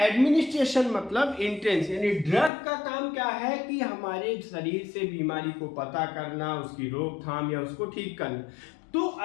एडमिनिस्ट्रेशन मतलब एंट्रेंस, यानी ड्रग का काम क्या है कि हमारे शरीर से बीमारी को पता करना, उसकी रोकथाम या उसको ठीक करना। तो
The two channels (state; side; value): drops out; right; at 2.5 s